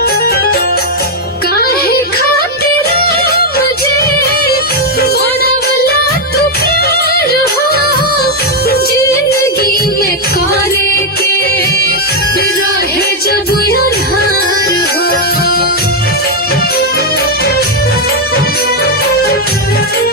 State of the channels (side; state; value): both; normal; correlation 0.01